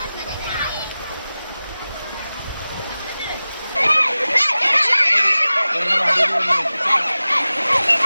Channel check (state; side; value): inverted; both; correlation -0.96